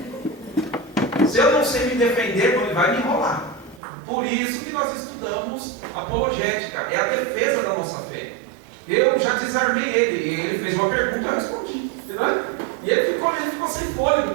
Se eu não sei me defender, ele vai me enrolar. Por isso que nós estudamos apologética, é a defesa da nossa fé. Eu já desarmei ele fez uma pergunta, eu respondi, entendeu? E ele ficou sem fôlego,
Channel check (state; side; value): drops out; left; at 3.8 s